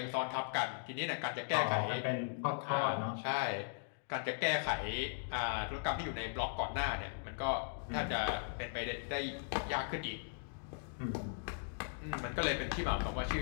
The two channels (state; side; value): silent; right; digital silence